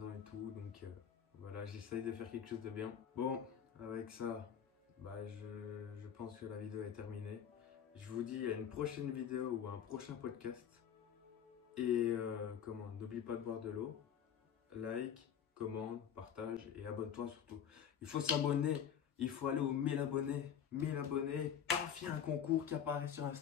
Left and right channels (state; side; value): quieter; right; 8.6 dB